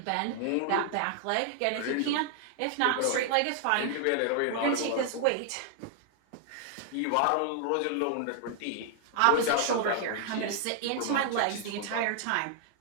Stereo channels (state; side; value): different; both; correlation 0.00